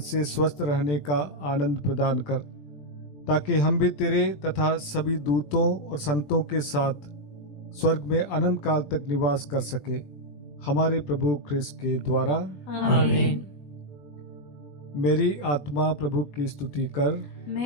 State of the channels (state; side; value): late; right; 20 ms